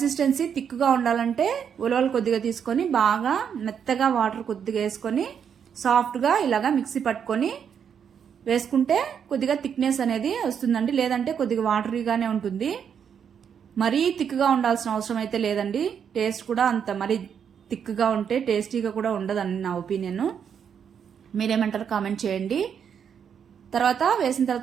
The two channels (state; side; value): quieter; left; 7.7 dB